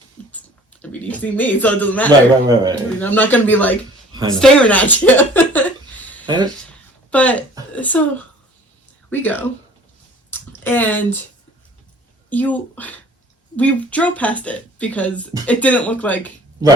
I mean, you see me, so it doesn't matter. Right. I mean, I'm not going to be, like, staring at you. But, so, we go. And we drove past it because it didn't look like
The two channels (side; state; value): both; normal; correlation 0.49